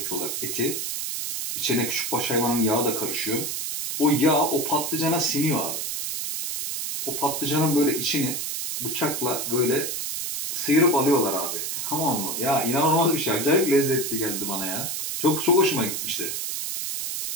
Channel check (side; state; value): right; noise; hiss, 3 dB below the sound